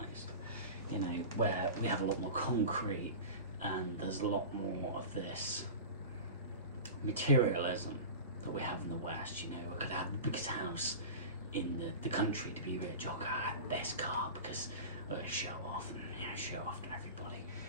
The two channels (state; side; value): inverted; both; correlation -0.31